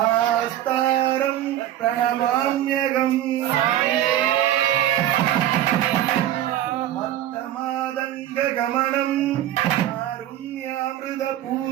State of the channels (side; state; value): left; quieter; 12.6 dB